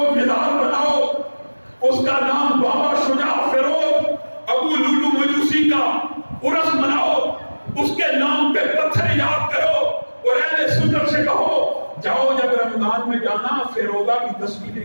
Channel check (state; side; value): inverted; both; correlation -1.00